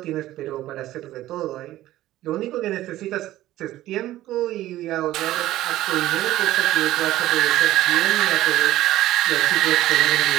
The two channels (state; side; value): quieter; left; 15.0 dB